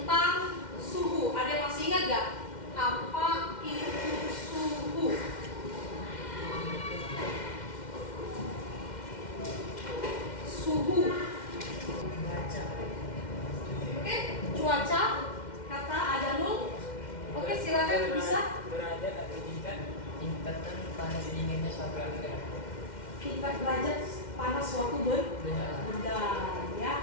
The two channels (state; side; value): late; right; 2.1 ms